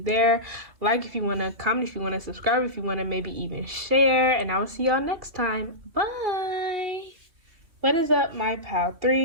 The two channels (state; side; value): late; left; 2.7 ms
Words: there. Like if you want to, comment if you want to, subscribe if you want to, maybe even share. And I will see y'all next time. Bye. What is up, my pal